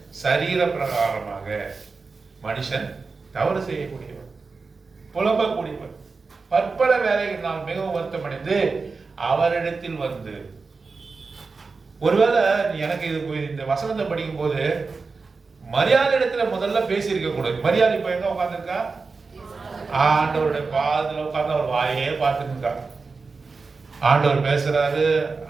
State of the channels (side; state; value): left; quieter; 4.3 dB